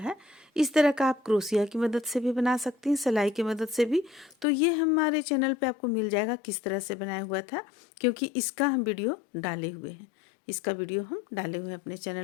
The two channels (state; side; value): drops out; right; at 4.5 s